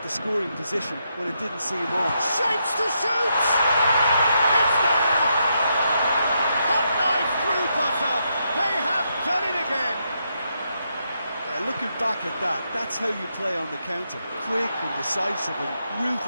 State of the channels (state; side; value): inverted; both; correlation -0.80